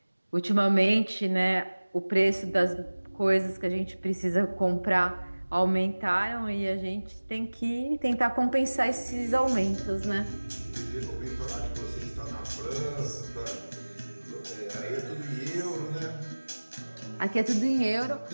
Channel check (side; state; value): both; inverted; correlation -1.00